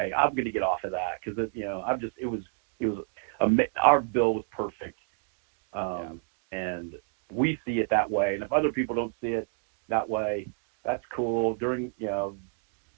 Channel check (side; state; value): left; silent; 58 dB below the other